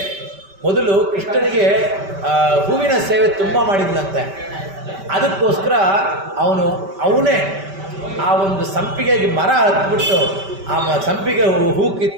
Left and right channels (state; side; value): late; left; 5.1 ms